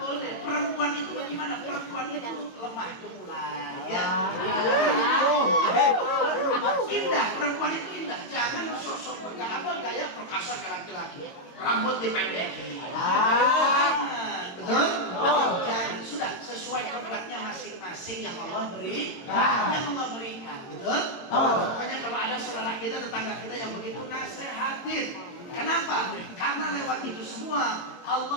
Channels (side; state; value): right; late; 22 ms